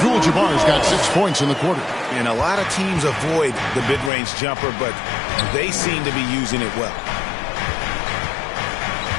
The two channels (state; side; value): drops out; right; at 4.1 s